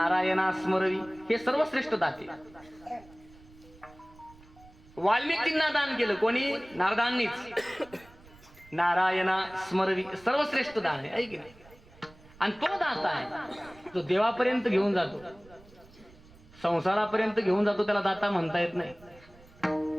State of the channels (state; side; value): noise; right; rumble, 24 dB below the sound